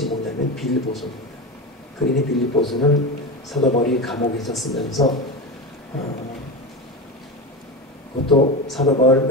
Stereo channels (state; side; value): normal; both; correlation 0.22